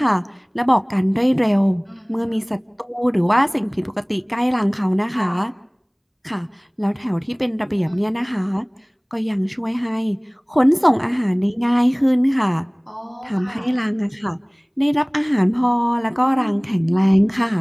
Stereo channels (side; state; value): both; identical; correlation 1.00